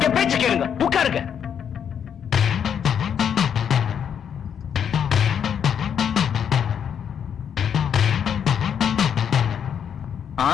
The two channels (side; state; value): right; quieter; 8.2 dB